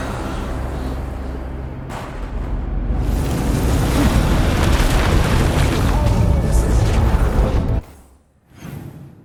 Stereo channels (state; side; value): identical; both; correlation 1.00